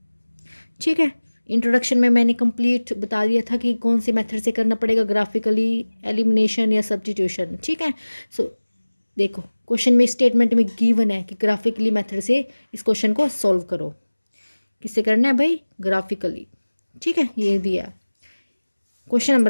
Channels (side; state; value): both; inverted; correlation -1.00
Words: ठीक है, introduction में मैंने complete बता दिया था कि कौन से मेथड से करना पड़ेगा, ग्राफिकली, एलिमिनेशन या सब्स्टिट्यूशन। ठीक है, सो देखो क्वेश्चन में स्टेटमेंट में गिवन है कि ग्राफिकली मेथड से इस क्वेश्चन को सॉल्व करो। किससे करना है भाई? ग्राफिकली। ठीक है, ये दिया क्वेश्चन